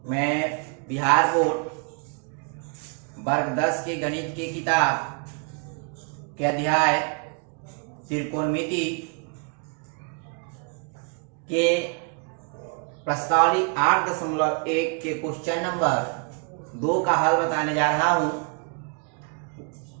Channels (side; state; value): left; quieter; 39.3 dB